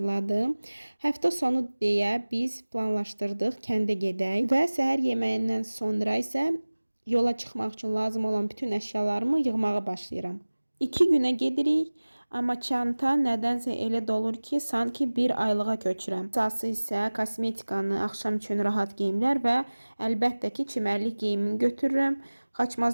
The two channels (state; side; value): inverted; both; correlation -1.00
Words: Həftə sonu deyə biz planlaşdırdıq kəndə gedək və səhər yeməyindən sonra isə yola çıxmaq üçün lazım olan bütün əşyalarımı yığmağa başlayıram. 2 günə gedirik, amma çanta nədənsə elə dolur ki, sanki bir aylığa köçürəm. Əsası isə kosmetikanı, axşam üçün rahat geyimlər və əlbəttə ki, çimərlik geyimini götürürəm.